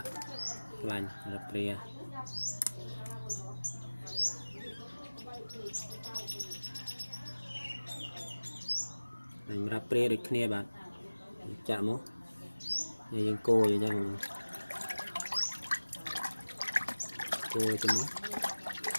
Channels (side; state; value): both; inverted; correlation -1.00